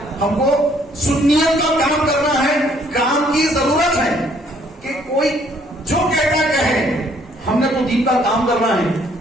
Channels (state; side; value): normal; both; correlation 0.64